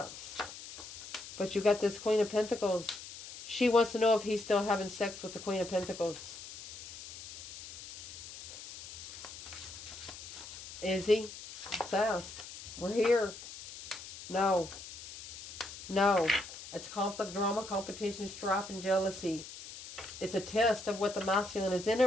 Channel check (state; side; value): noise; left; hiss, 13 dB below the sound